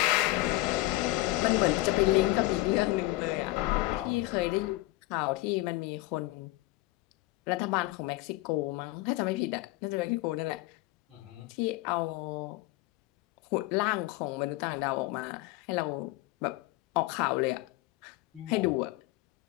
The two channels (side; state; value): right; quieter; 19.7 dB